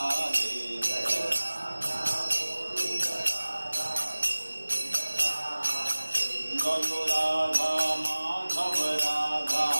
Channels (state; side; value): inverted; both; correlation -1.00